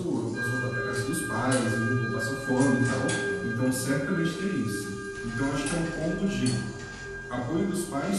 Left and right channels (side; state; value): both; identical; correlation 1.00